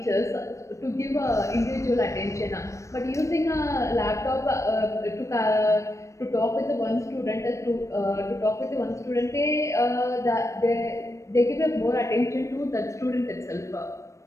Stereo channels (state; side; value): late; right; 0.15 ms